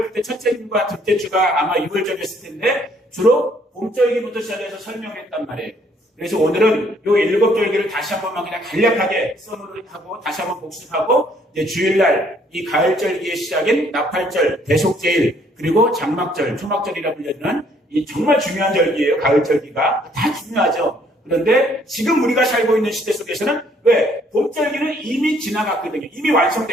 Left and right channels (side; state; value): both; normal; correlation 0.64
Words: 그때 첫째 주와 둘째 주가 아마 6월절이었을 텐데 주로 봄절기부터 시작해서 설명했단 말이에요. 그래서 오늘은 요 7절기를 다시 한 번만 그냥 간략하게 써놓고 다시 한번 복습하고 이제 주일날 이 가을절기의 시작인 나팔절, 대속제일, 그리고 장막절, 초막절이라 불리는 이 정말 중요한 절기예요. 가을절기가 다 중요하죠. 그런데 지금 우리가 살고 있는 시대 속에서는 왜? 봄절기는 이미 지나갔거든요. 이미